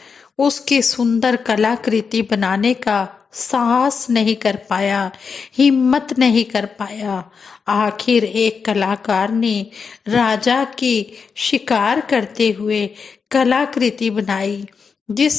उसकी सुंदर कलाकृति बनाने का साहस नहीं कर पाया, हिम्मत नहीं कर पाया। आखिर एक कलाकार ने राजा की शिकार करते हुए कलाकृति बनाई,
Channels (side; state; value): right; quieter; 5.6 dB